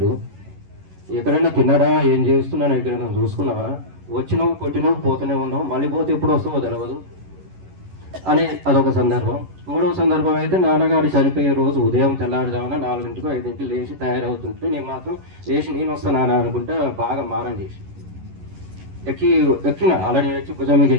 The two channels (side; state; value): left; late; 11 ms